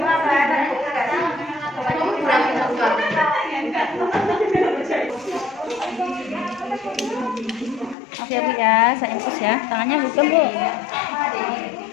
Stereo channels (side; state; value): right; drops out; at 8.0 s